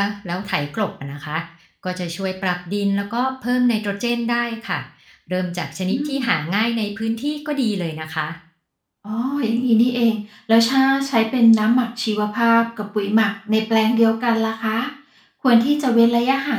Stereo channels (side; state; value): both; identical; correlation 1.00